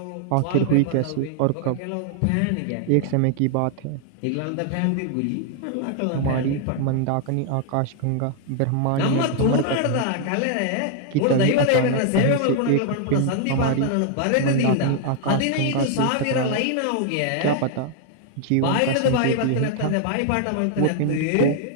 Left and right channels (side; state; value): both; different; correlation 0.00